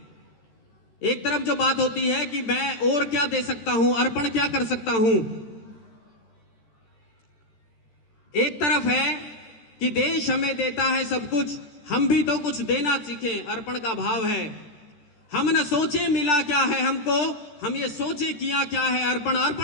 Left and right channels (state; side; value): late; right; 14 ms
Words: एक तरफ जो बात होती है कि मैं और क्या दे सकता हूं, अर्पण क्या कर सकता हूं। एक तरफ है कि देश हमें देता है सब कुछ, हम भी तो कुछ देना सीखें, अर्पण का भाव है। हम न सोचे मिला क्या है हमको, हम ये सोचे किया क्या है, अर्पण